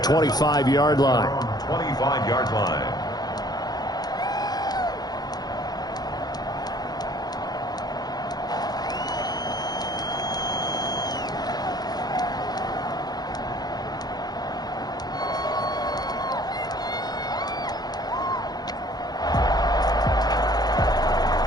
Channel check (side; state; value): right; late; 0.19 ms